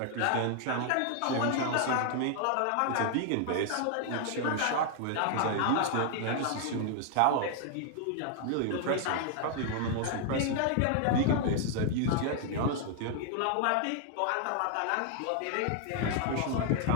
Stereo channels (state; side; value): different; both; correlation 0.00